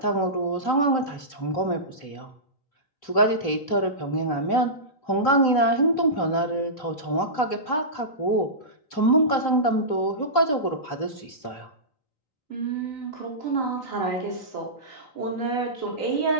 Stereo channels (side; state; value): right; late; 3.4 ms